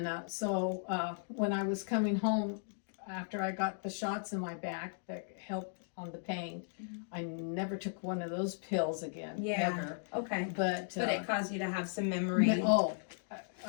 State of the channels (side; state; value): right; silent; digital silence